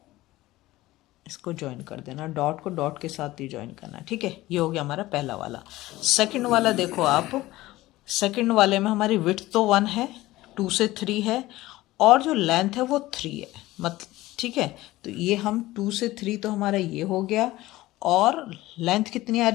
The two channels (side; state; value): right; quieter; 17.5 dB